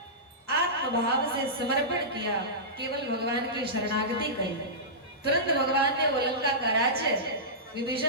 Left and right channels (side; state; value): both; normal; correlation -0.17